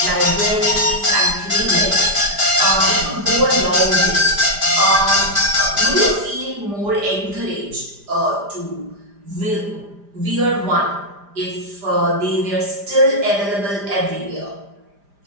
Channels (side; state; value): left; late; 5.0 ms